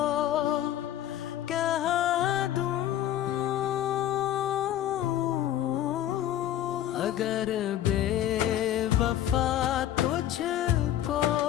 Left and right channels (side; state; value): right; quieter; 11.9 dB